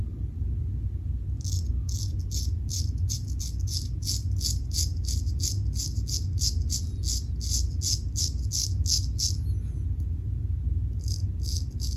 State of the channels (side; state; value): both; identical; correlation 1.00